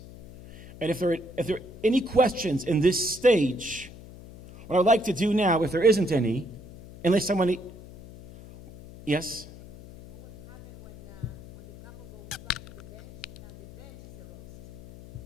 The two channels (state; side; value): noise; left; hum, 17 dB below the sound